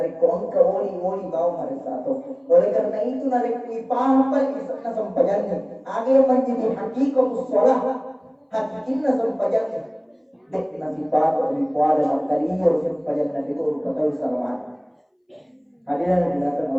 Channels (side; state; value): both; identical; correlation 1.00